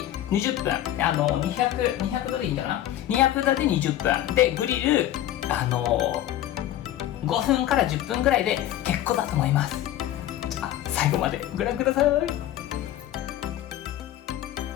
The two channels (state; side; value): quieter; right; 12.8 dB